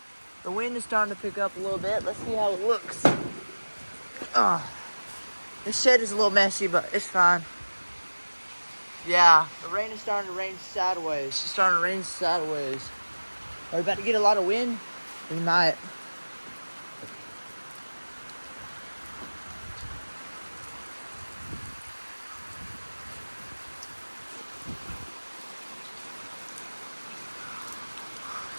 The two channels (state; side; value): inverted; both; correlation -1.00